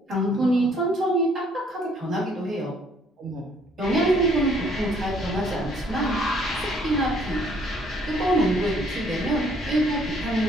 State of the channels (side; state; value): both; normal; correlation 0.63